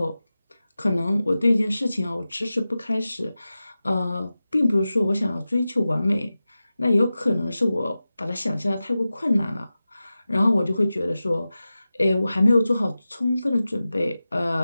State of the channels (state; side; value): inverted; both; correlation -0.94